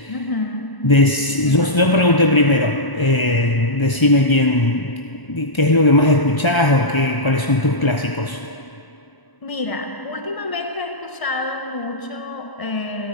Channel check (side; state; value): right; late; 1.0 ms